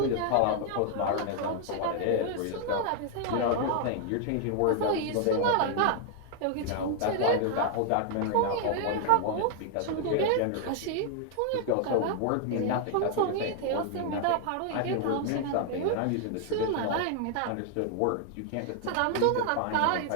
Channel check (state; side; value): different; both; correlation 0.00